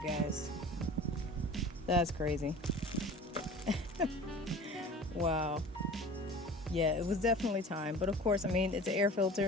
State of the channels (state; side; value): normal; both; correlation 0.40